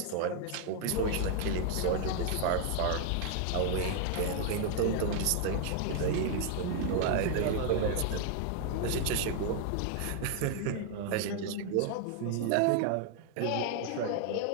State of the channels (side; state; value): both; different; correlation 0.00